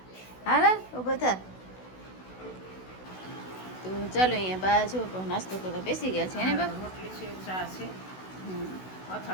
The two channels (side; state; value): right; late; 16 ms